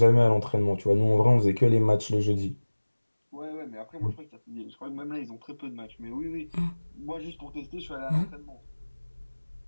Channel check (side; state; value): both; inverted; correlation -1.00